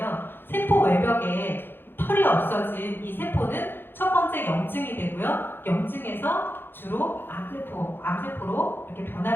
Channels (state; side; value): late; right; 0.10 ms